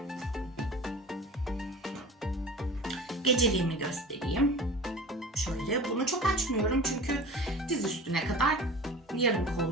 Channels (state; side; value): normal; both; correlation 0.38